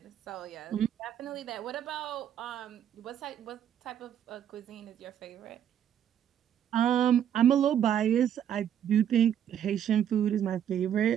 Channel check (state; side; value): quieter; left; 9.6 dB